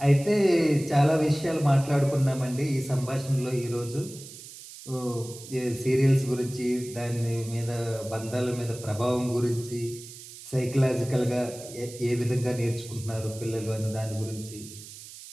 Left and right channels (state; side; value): noise; right; hiss, 15 dB below the sound